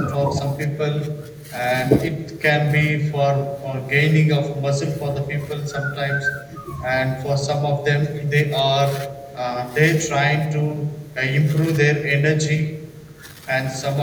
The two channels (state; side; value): identical; both; correlation 1.00